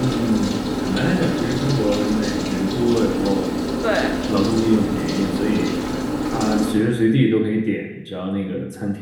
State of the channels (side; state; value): both; identical; correlation 1.00